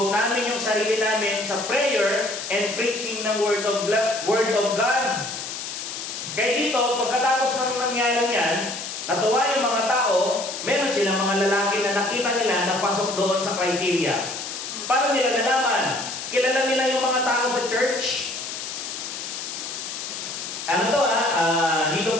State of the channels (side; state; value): left; noise; hiss, 7 dB below the sound